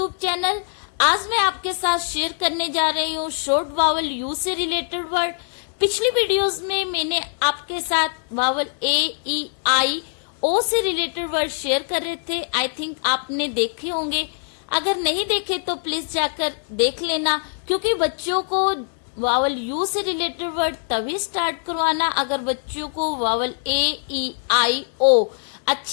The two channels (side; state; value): right; silent; 64 dB below the other